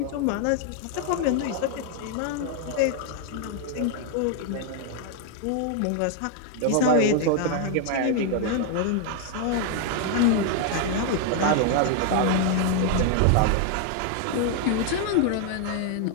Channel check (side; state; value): both; different; correlation 0.00